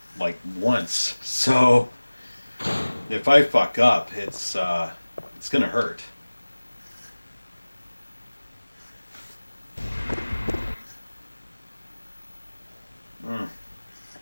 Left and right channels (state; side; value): inverted; both; correlation -1.00